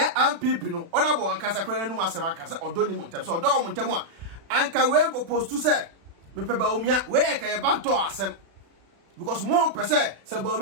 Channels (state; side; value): late; left; 36 ms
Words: no, honorable and Casacran no Masamaka, or Donny Montem, so don't Montemua, and can we go post to say. Me pe Baumia where can you back to asem because more per se